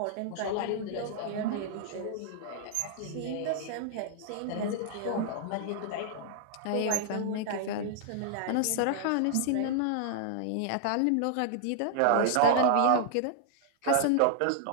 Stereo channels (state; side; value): different; both; correlation -0.01